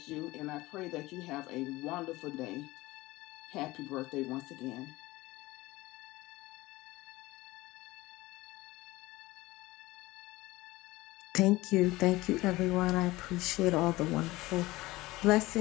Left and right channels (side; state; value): right; quieter; 19.6 dB